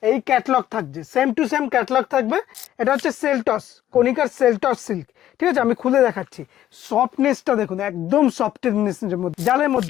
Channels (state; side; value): quieter; right; 12.3 dB